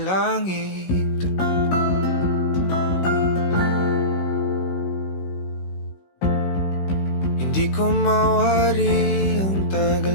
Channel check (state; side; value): late; right; 16 ms